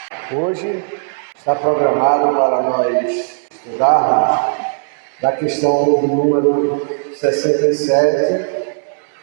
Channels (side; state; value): left; silent; digital silence